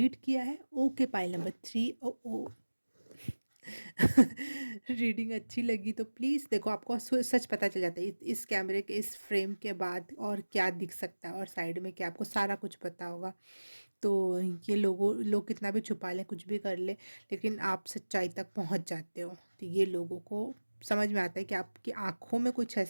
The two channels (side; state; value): both; inverted; correlation -1.00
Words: किया है। Okay, pile number 3। ओ ओ रीडिंग अच्छी लगी तो प्लीज़ देखो, आपको सच पता चल जाता है इस कैमरे के इस फ्रेम के बाद और क्या दिख सकता है और साइड में क्या, आपको सारा कुछ पता होगा। तो ये लोग कितना भी छुपा लें, कुछ भी कर लें, लेकिन आप सच्चाई तक पहुंच जाते हो। तो ये लोगों को समझ में आता है कि आपकी आंखों में कुछ